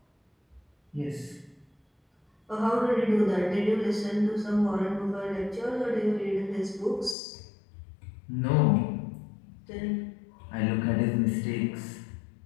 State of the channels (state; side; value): drops out; right; at 7.2 s